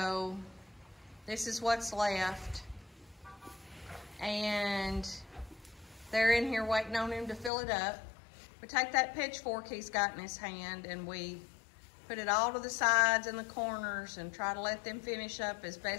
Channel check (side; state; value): right; drops out; at 7.5 s